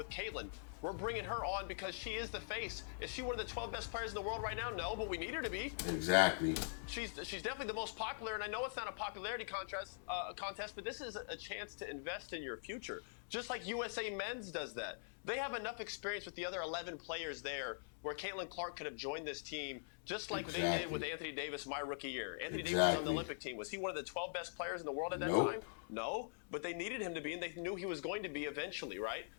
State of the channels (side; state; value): right; silent; digital silence